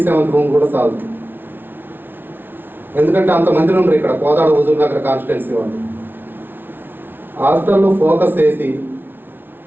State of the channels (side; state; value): left; late; 0.10 ms